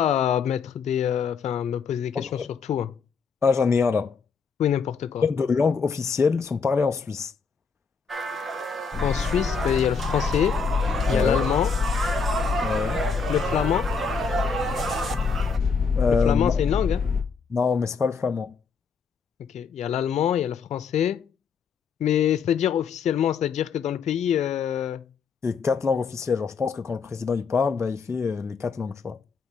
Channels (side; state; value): right; quieter; 5.5 dB